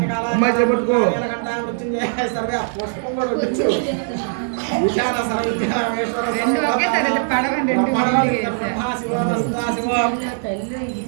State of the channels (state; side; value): silent; left; digital silence